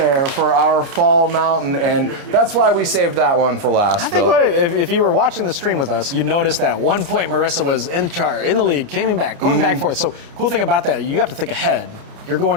for our Fall Mountain, and that's why we saved that one for last. I think if you were watching the stream with us, you'd notice that at one point Marissa was in the lead, going back and forth. So cool thing about that, you have to think ahead. You're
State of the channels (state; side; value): late; left; 29 ms